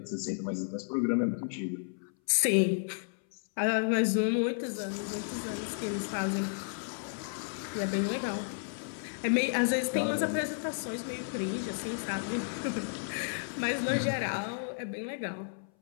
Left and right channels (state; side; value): silent; right; 56 dB below the other